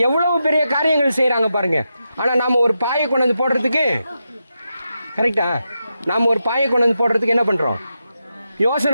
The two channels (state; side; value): inverted; both; correlation -0.87